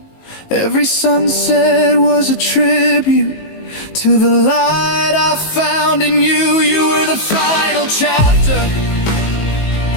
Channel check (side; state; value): right; late; 19 ms